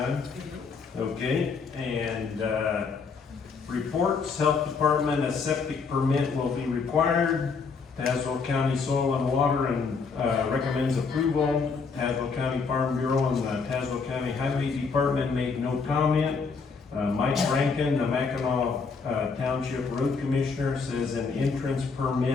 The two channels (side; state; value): right; quieter; 5.0 dB